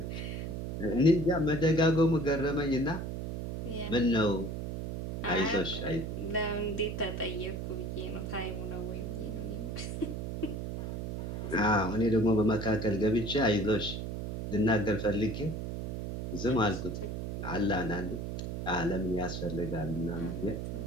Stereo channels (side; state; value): right; noise; hum, 5 dB below the sound